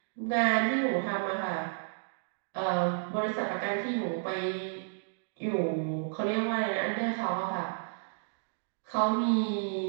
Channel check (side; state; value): left; silent; digital silence